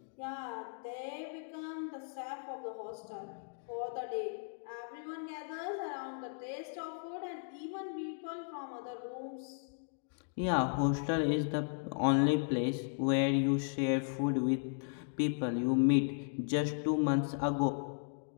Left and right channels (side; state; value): right; silent; digital silence